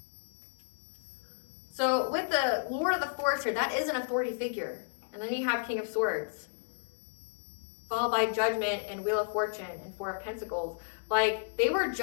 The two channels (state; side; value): silent; right; digital silence